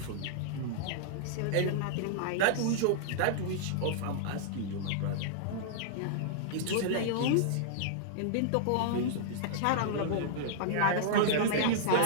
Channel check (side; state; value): both; different; correlation -0.02